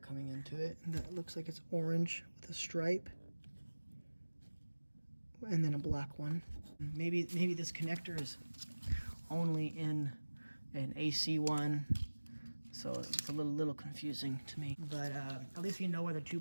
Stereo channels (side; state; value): both; inverted; correlation -1.00